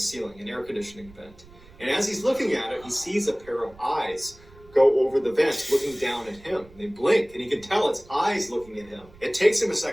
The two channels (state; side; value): noise; right; rumble, 24 dB below the sound